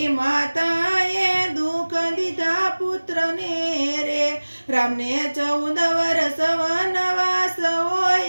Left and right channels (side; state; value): both; inverted; correlation -1.00